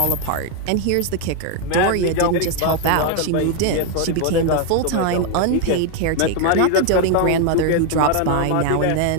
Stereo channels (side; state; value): both; different; correlation 0.01